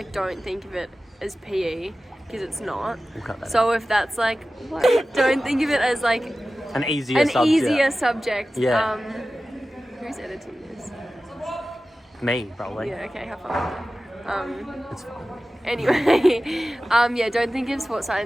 don't think of it as PE because it's not. We'll cut that So if that's like, what? Don't think of it as like An easier an subject. easier subject. Yeah. Who's editing this? Me, probably. Yeah. Okay. Have fun. It's fine. Anyway, yeah. Don't think of sports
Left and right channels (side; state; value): both; normal; correlation 0.95